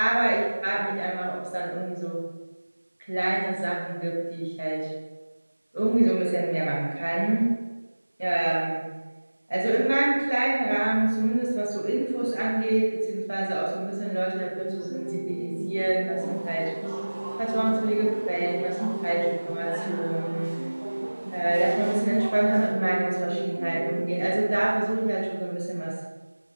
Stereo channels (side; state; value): both; inverted; correlation -1.00